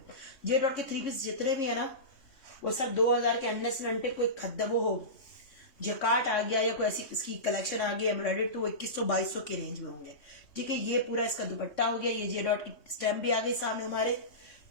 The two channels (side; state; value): right; late; 3.2 ms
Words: जे डॉट के 3 पीस जितने भी है ना वो सब 2000 के अंडर से अंटे। कोई खद्दा वो हो जकाट आ गया या कोई ऐसी इसकी कलेक्शन आ गई एम्ब्रॉयडर्ड तो वो 2100-2200 के रेंज में होंगे, ठीक है। ये पूरा इसका दुपट्टा हो गया। ये जे डॉट की स्टैम्प भी आ गई सामने हमारे,